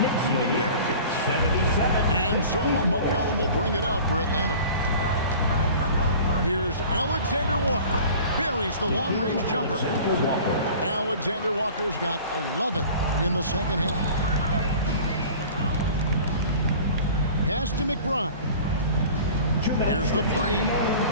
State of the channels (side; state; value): both; inverted; correlation -0.42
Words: even better finish. And so McCollum will bring it up for Atlanta. Here's Alexander Walker. Buries the long-range jumper. Alexander Walker's got 11 in the second half. Pass to McBride. Here's the three.